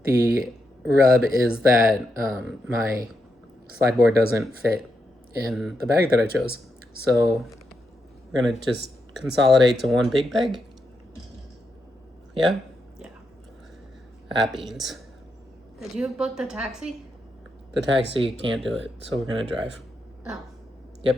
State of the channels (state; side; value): normal; both; correlation 0.84